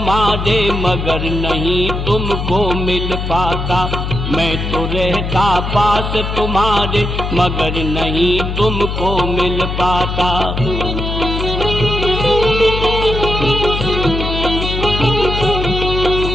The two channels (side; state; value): left; noise; hum, 3 dB below the sound